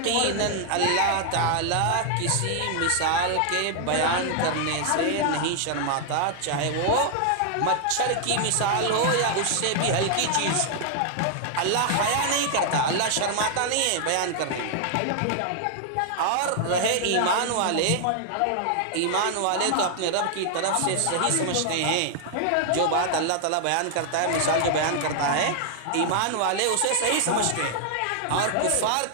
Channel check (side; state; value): both; different; correlation 0.00